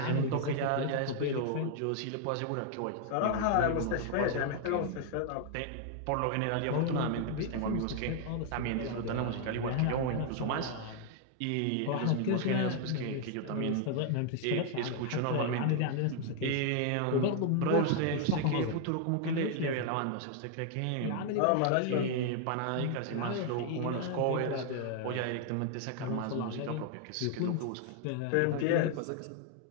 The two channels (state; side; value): different; both; correlation 0.00